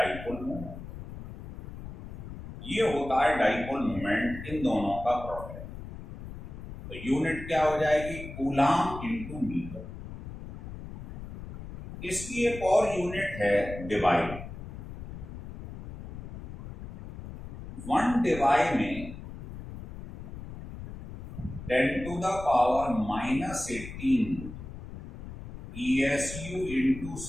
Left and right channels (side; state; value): left; noise; rumble, 11 dB below the sound